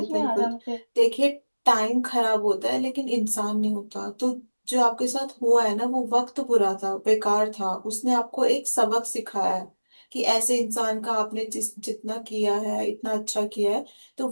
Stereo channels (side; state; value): both; inverted; correlation -1.00